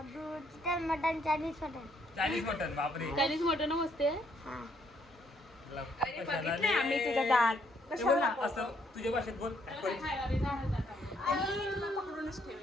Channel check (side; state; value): both; normal; correlation 0.70